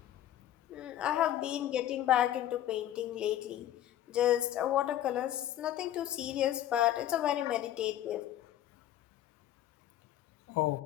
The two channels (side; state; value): right; quieter; 12.3 dB